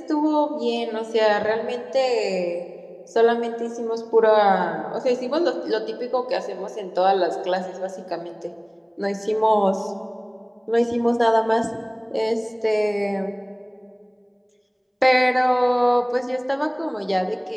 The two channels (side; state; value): both; identical; correlation 1.00